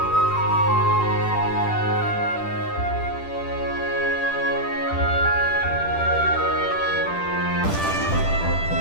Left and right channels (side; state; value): right; late; 10 ms